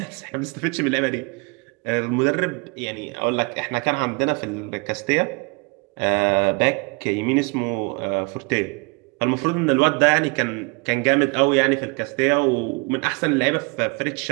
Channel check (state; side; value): quieter; left; 29.7 dB